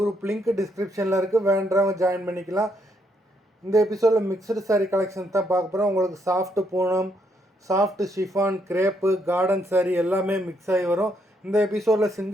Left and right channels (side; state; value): both; normal; correlation 0.74